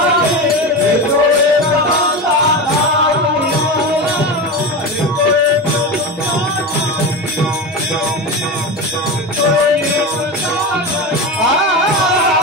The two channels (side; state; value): both; normal; correlation 0.22